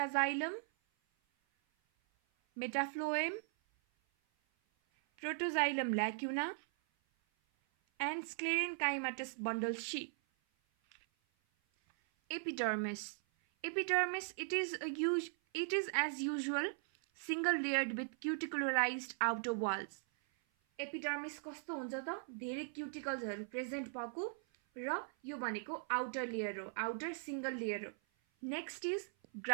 metaphlloem, protoxylem lacuna, and sclerenchymatous bundle sheath. Epidermis. Epidermis, it is as usual single layered with cuticularized outer walls. Epidermis कस्तो हुन्छ त? धेरै cuticles हरु present भएको र यो भनेको outer layer हो, outer single layer हो. Next is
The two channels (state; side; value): silent; left; 51 dB below the other